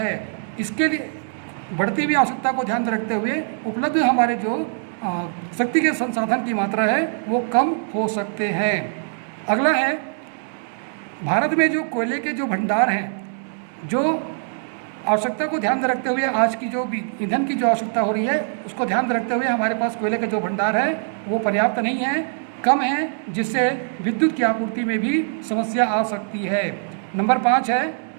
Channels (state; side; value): silent; left; digital silence